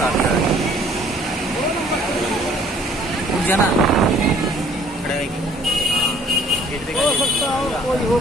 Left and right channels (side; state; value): both; normal; correlation 0.57